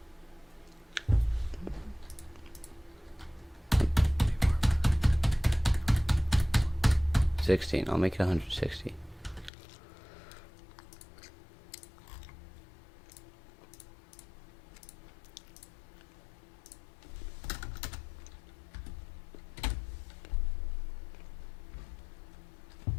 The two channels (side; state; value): right; drops out; at 9.5 s